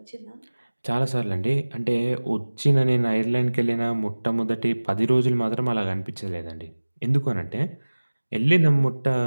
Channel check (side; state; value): both; inverted; correlation -1.00